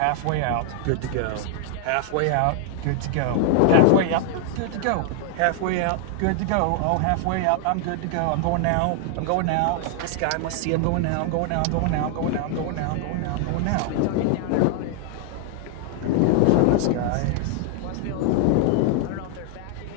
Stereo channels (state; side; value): different; both; correlation 0.00